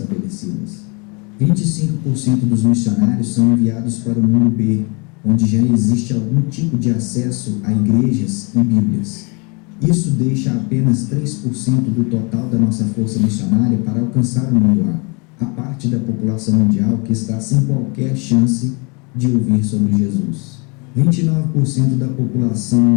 25% dos missionários são enviados para o mundo B, onde já existe algum tipo de acesso a igrejas e Bíblias. Isso deixa apenas 3% do total da nossa força missionária para alcançar o mundo A, a parte da população mundial que está sem qualquer chance de ouvir sobre Jesus. 29% da população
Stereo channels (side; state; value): right; quieter; 31.8 dB